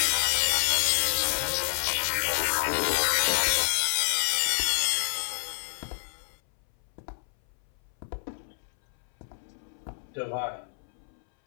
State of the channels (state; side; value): silent; right; 59 dB below the other